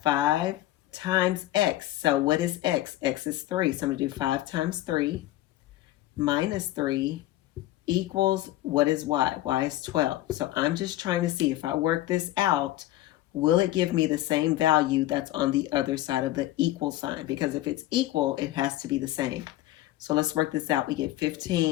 5 times x. So what is x? X is 3. So I'm going to do 5 times 3 minus 3 equals, what is y? Y is 12. So I'm just trying to see if I work this out, will it give me the same value that's on the other side of the equal sign? Because if it's equal, it has to be the same. So let's work this out. We get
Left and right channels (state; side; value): quieter; right; 15.3 dB